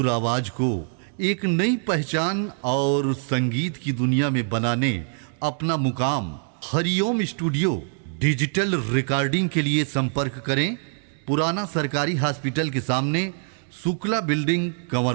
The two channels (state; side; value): silent; left; 62 dB below the other